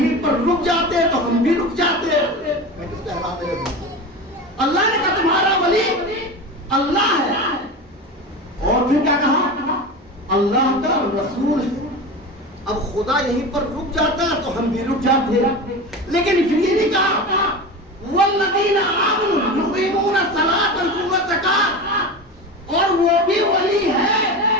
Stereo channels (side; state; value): both; normal; correlation 0.27